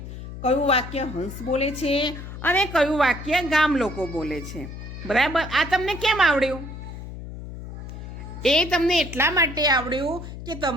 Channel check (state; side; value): noise; left; hum, 10 dB below the sound